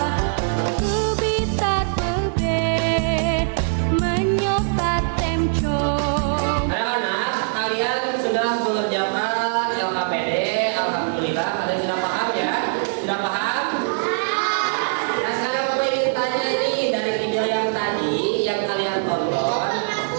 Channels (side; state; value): left; silent; digital silence